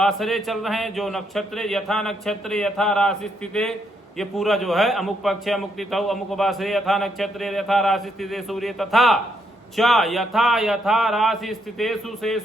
चल रहे हैं, जो नक्षत्र यथा नक्षत्र यथा राशि स्थिते, ये पूरा जो है अमुक पक्ष अमुक तिथौ अमुक वासरे यथा नक्षत्र यथा राशि स्थिते सूर्य तथा च यथा यथा राशि स्थितेषु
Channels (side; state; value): both; normal; correlation 0.75